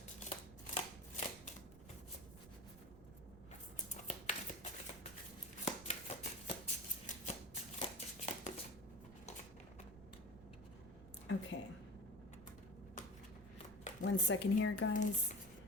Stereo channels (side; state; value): right; noise; rumble, 17 dB below the sound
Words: Okay. 1 second here, guys.